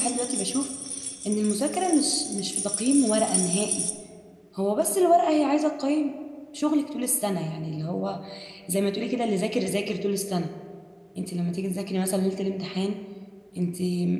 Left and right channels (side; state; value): both; identical; correlation 1.00